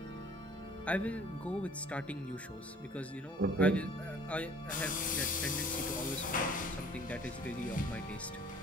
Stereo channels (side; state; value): both; normal; correlation 0.53